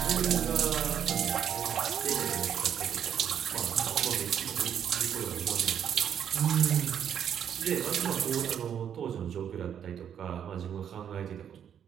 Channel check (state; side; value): quieter; left; 8.8 dB